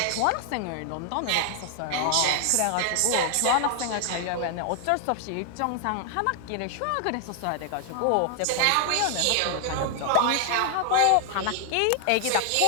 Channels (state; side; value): different; both; correlation 0.00